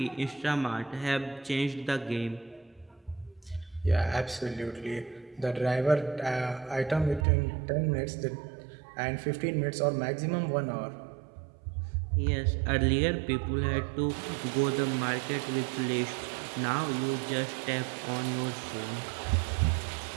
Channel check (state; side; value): drops out; left; at 7.2 s